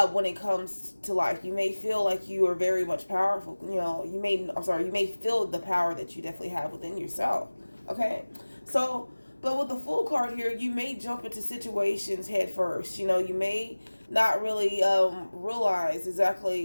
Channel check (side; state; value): both; inverted; correlation -1.00